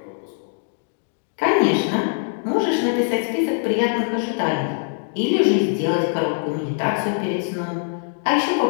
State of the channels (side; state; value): right; silent; digital silence